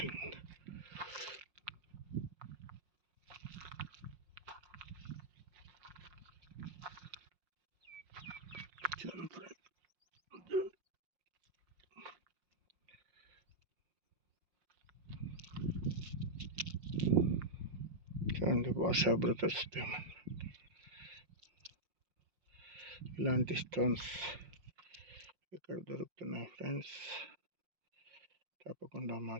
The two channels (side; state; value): left; late; 5.6 ms